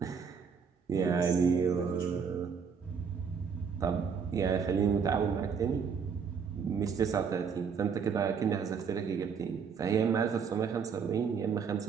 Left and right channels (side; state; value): left; quieter; 6.3 dB